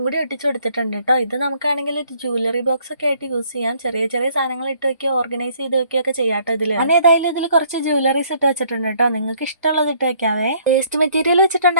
കൂടി ഒട്ടിച്ചു കൊടുത്തിട്ടുണ്ട് കേട്ടോ. ഇത് നമുക്കാണെങ്കിൽ ഒരു ജ്വല്ലറി ബോക്സ് ഒക്കെ ആയിട്ട് യൂസ് ചെയ്യാം. ചെറിയ ചെറിയ സാധനങ്ങൾ ഇട്ട് വെക്കുക, ഓർഗനൈസ് ചെയ്ത് വെക്കുകയൊക്കെ ചെയ്യാട്ടോ ഇതില്. ഞാൻ ഏതായാലും ഇതിൽ കുറച്ച് ജ്വല്ലറീസ് ഇട്ട് വെച്ചിട്ടുണ്ട് കേട്ടോ. നിങ്ങൾക്ക് ഇഷ്ടമുള്ളത് ഇട്ട് വെക്കാവേ. വേസ്റ്റ് മെറ്റീരിയൽ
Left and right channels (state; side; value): inverted; both; correlation -0.63